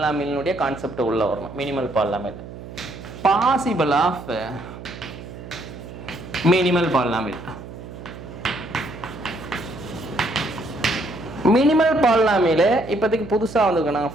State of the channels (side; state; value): right; noise; hum, 13 dB below the sound